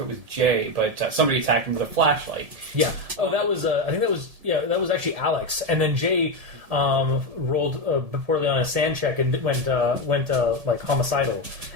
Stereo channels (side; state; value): left; late; 1.7 ms